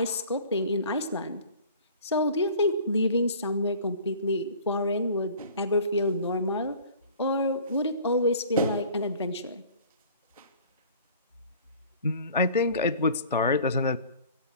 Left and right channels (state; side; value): inverted; both; correlation -0.47